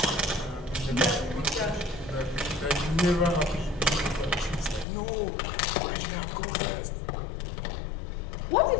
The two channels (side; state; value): right; drops out; at 4.9 s